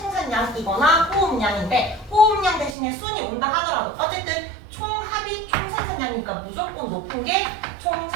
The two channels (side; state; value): left; drops out; at 2.8 s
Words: 호흡량인데 호흡량 대신에 순이 온다 하더라도 어쨌든 총합이 총생산량이니까 무조건 높은 게